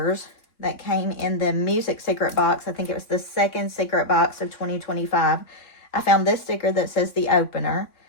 that came in the music secret box, I think it was the second secret box of 2025, I found this sticker that says the opener,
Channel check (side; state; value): right; late; 3.6 ms